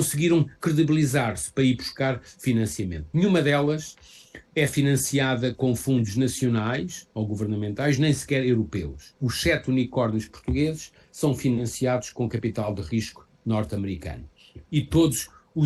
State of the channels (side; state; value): both; identical; correlation 1.00